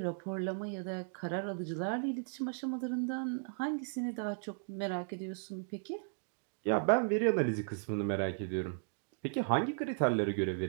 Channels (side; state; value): left; silent; digital silence